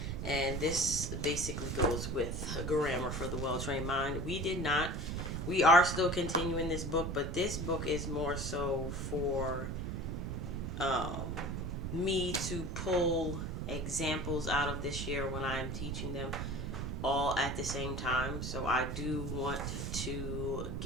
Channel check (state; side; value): noise; right; rumble, 3 dB below the sound